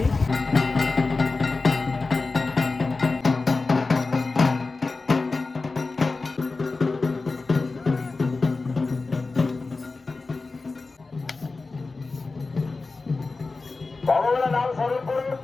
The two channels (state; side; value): quieter; right; 3.8 dB